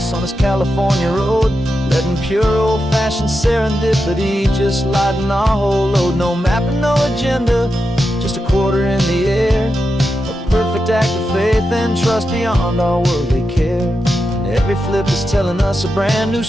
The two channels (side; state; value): both; normal; correlation 0.88